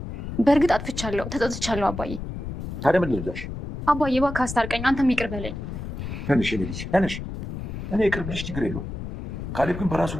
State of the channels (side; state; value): left; noise; rumble, 7 dB below the sound